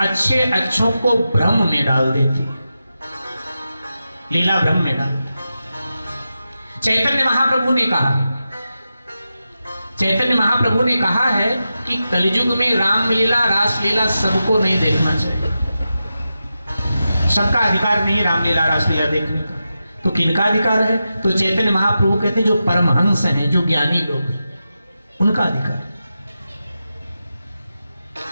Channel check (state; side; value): inverted; both; correlation -0.90